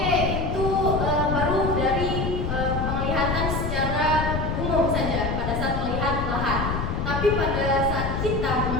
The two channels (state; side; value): noise; left; rumble, 2 dB below the sound